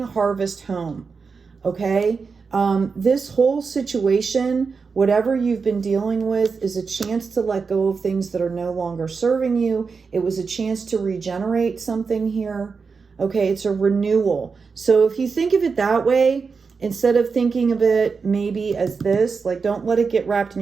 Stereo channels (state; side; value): quieter; left; 5.1 dB